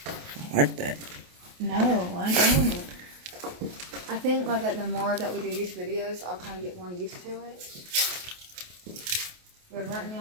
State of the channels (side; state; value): left; late; 28 ms